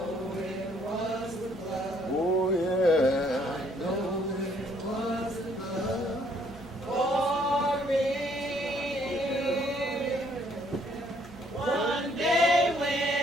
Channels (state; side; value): normal; both; correlation 0.65